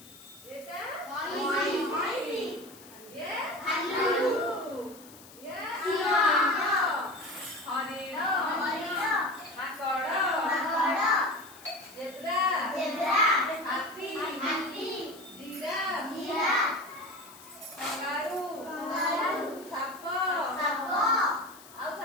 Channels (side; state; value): left; noise; hiss, 20 dB below the sound